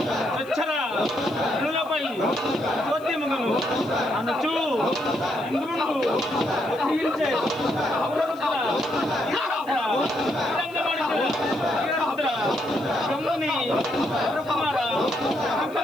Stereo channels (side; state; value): left; noise; hiss, 25 dB below the sound